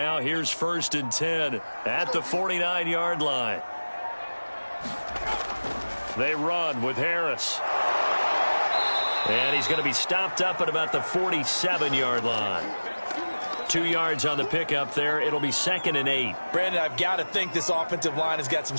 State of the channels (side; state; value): both; inverted; correlation -1.00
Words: here's 1st and 10 at the 49-yard line. They run with Harris. And he's going to be stopped up at about the 47-yard line. 2 yards on the pickup there. It'll be 2nd and 8. Brandon, I've got to think this offensive line has got some